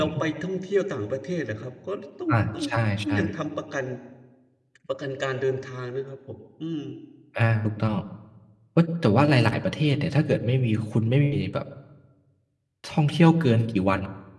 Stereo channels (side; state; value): both; identical; correlation 1.00